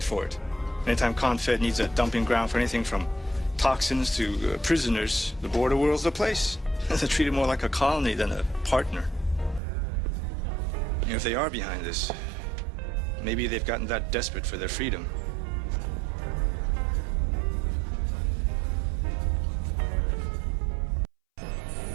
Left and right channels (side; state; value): left; drops out; at 9.6 s